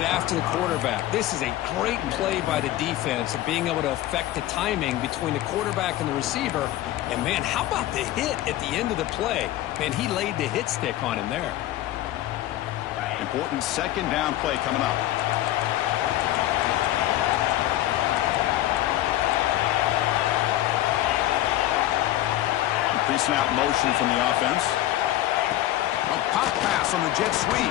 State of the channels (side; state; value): right; quieter; 14.5 dB